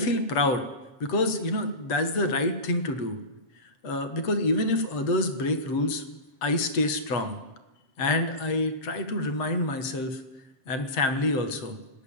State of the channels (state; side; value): late; right; 7.6 ms